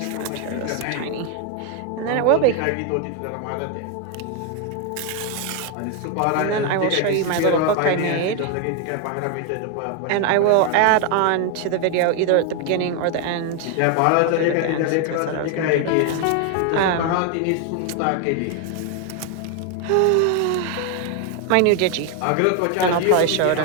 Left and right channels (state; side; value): different; both; correlation 0.01